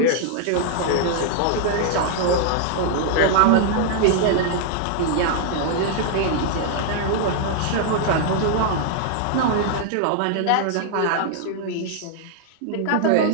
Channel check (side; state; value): both; different; correlation 0.00